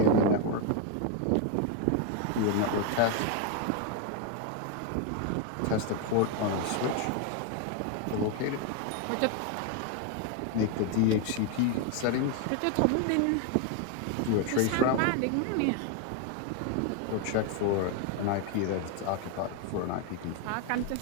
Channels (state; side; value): different; both; correlation 0.01